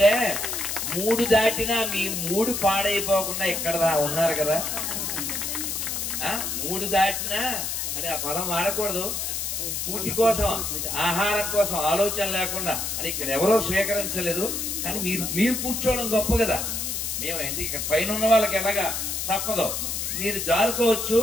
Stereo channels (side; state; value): left; noise; hiss, 2 dB below the sound